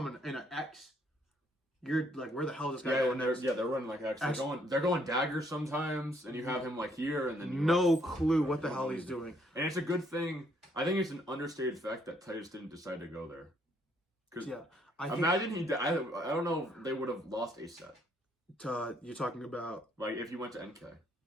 in an X. You're like, where the hell is this guy Yeah, going and next? they're running like X. They're going daggers sometimes, and you have him like here, and then you No clue what the hell he's doing. And it's a good thing. I think it's an understated fact that Titus didn't decide to go there. Because Yeah, I think imagine he. I don't know. If they would have lost a set. you're talking about Like if he went to NK,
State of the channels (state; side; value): normal; both; correlation 0.69